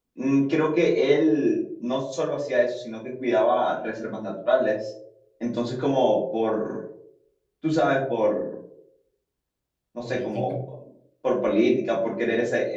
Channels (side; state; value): both; identical; correlation 1.00